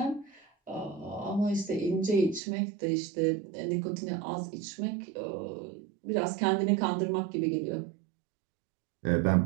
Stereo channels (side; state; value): left; drops out; at 2.4 s